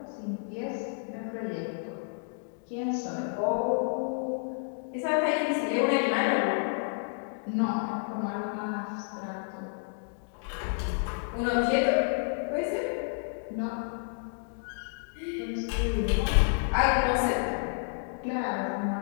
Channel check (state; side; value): silent; right; digital silence